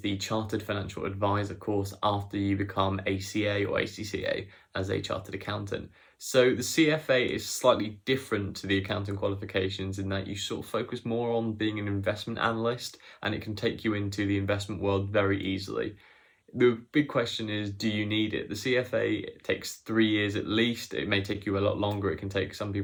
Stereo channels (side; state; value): both; identical; correlation 1.00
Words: Chartered Financial Advisor course after you become ACA or ACCA as a Chartered Accountant? So the CFA is slightly different to the accounting qualifications in that you sort of focus more on being an investment analyst, and it can take you into the investment world very easily. The big question is, do you need it? The CFA takes 3 years at least. It may take you a lot longer. It can take some